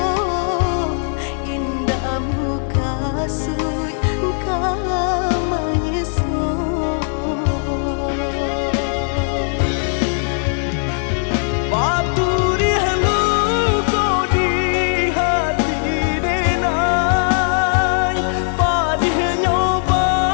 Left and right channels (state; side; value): silent; right; 67 dB below the other